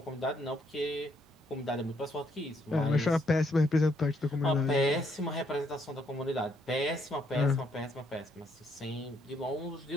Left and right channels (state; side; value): normal; both; correlation 0.72